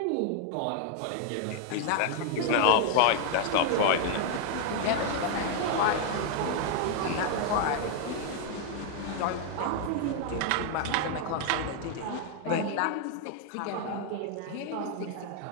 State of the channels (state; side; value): different; both; correlation 0.00